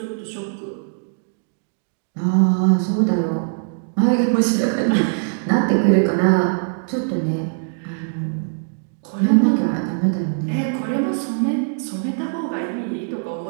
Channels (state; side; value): silent; left; digital silence